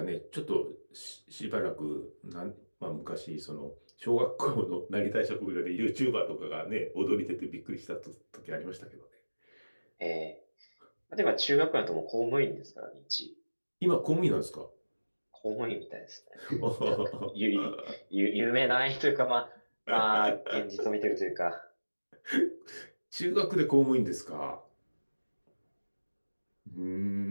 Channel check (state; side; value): inverted; both; correlation -1.00